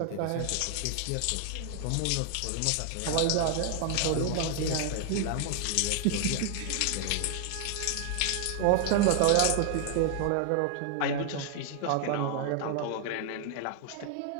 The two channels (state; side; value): different; both; correlation 0.00